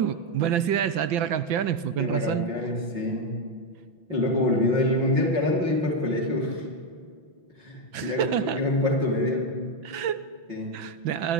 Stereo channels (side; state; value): left; late; 5.9 ms